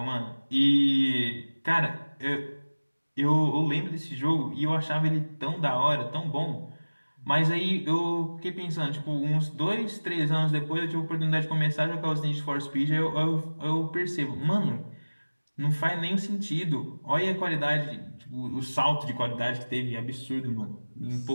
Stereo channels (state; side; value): inverted; both; correlation -1.00